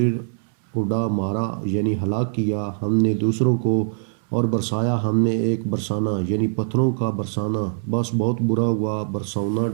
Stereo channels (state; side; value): silent; left; 64 dB below the other